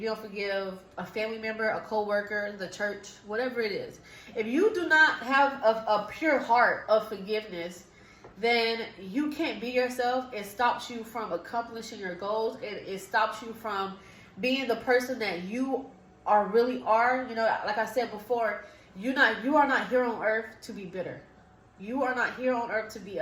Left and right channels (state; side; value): identical; both; correlation 1.00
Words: you don't forgive a family member, a co-worker, the church, whatever it is. If you do not have a pure heart of forgiveness, then you can't be yourself. It stops you from accomplishing your goals. It stops you from being the person that you really are. You know, like I said before, you are not here on earth to be bitter. You are not here on earth to be